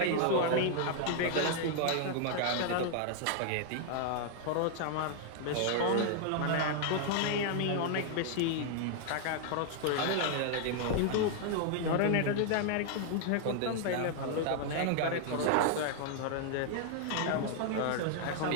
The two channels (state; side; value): different; both; correlation 0.00